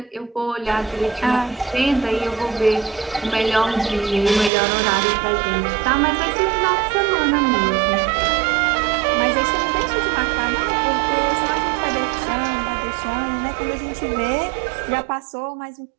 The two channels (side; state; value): left; drops out; at 4.5 s